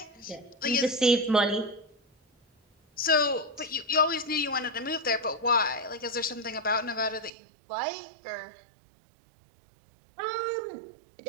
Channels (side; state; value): left; drops out; at 7.3 s